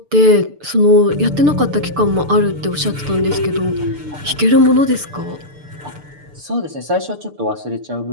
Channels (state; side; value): late; left; 6.8 ms